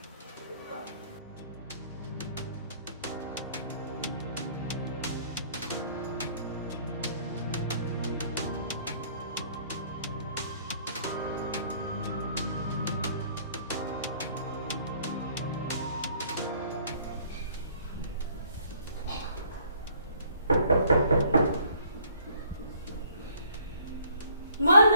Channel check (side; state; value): both; inverted; correlation -0.61